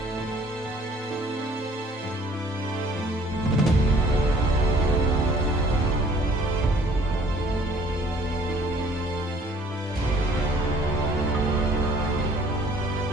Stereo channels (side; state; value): both; normal; correlation 0.56